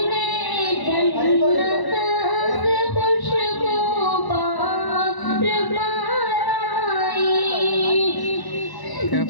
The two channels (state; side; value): late; right; 1.0 ms